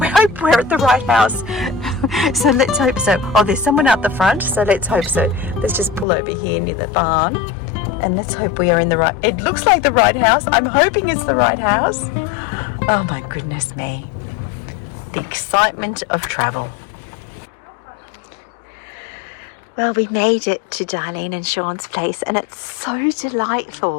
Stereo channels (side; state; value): right; drops out; at 6.1 s